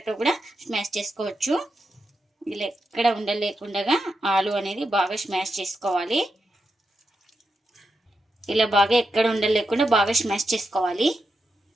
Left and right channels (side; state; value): both; normal; correlation 0.86